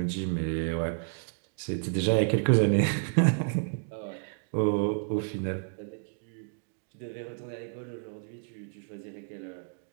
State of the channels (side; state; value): left; silent; digital silence